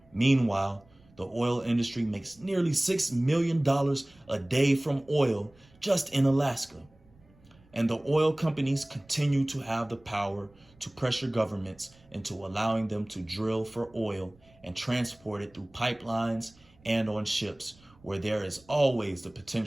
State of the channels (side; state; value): right; noise; rumble, 29 dB below the sound